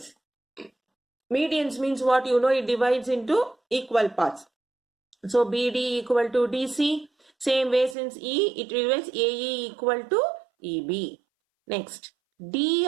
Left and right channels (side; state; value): left; drops out; at 8.0 s